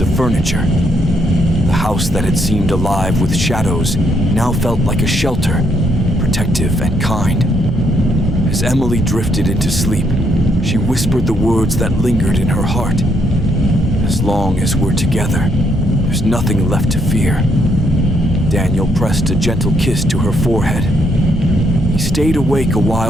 furniture. The house that had seemed alive with shadows now felt like a shelter, protective and kind. As Emily drifted into sleep, she whispered the words that lingered in her heart. As long as we're together, there's nothing left to fear. Daniel pressed a gentle kiss to her forehead. He stayed awake a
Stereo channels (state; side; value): normal; both; correlation 0.73